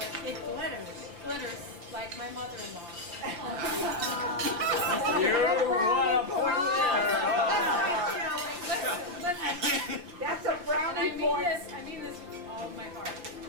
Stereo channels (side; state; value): left; late; 5.7 ms